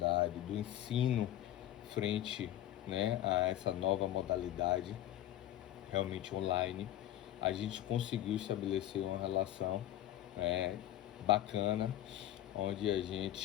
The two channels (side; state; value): right; quieter; 12.8 dB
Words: do ensino frente, né, a essa nova modalidade realmente online. A gente conseguiu estabelecer uma relação bacana, onde a gente